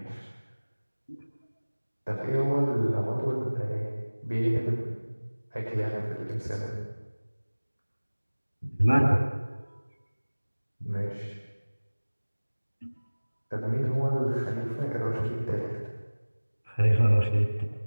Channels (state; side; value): inverted; both; correlation -1.00